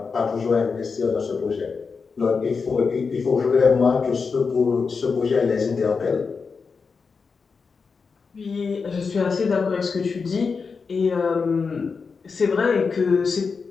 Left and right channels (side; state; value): right; quieter; 5.1 dB